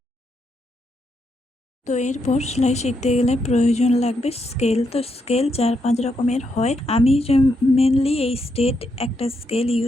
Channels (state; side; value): normal; both; correlation 0.80